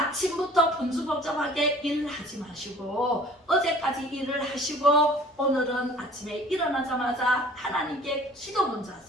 분주복잡하게 일을 하지 마시고 어제까지 일을 하시고 오늘은 아침에 일어나자마자 하나님께 기도 먼저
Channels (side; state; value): both; normal; correlation 0.50